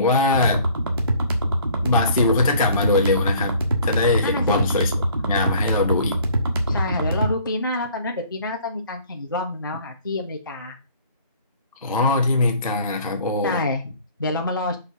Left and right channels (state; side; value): inverted; both; correlation -0.54